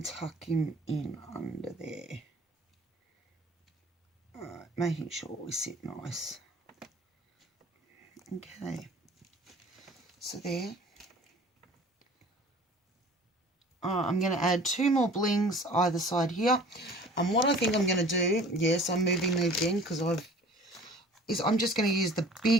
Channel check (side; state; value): both; normal; correlation 0.46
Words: tuck him in under there. Alright, making sure we sit nice. Okay, so there. I'm going to add 2 more blings either side here. And what I think I'm going to do, yes, I'm moving them again because I'm just going to use the